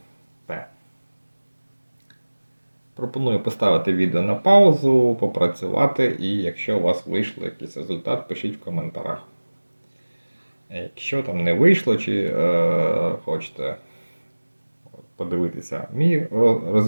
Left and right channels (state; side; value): inverted; both; correlation -1.00